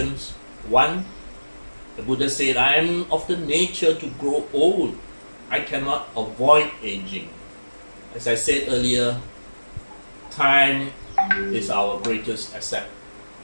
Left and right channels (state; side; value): inverted; both; correlation -1.00